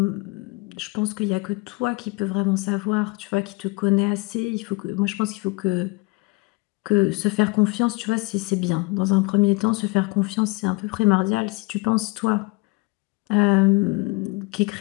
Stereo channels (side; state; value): right; quieter; 26.2 dB